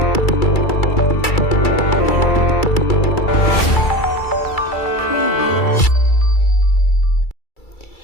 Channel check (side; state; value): right; late; 2.3 ms